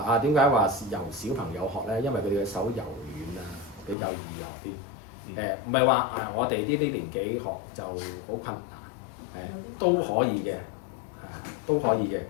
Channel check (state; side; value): drops out; right; at 4.0 s